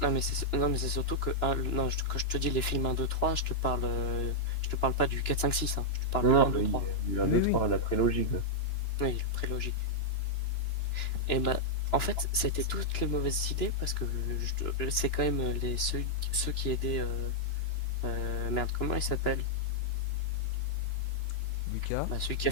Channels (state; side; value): late; right; 2.9 ms